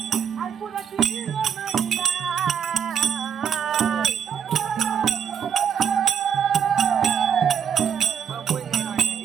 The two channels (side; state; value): left; quieter; 8.0 dB